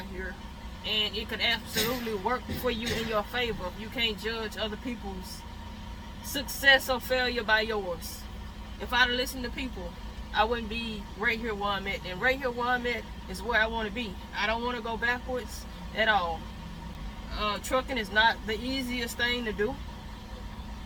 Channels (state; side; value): identical; both; correlation 1.00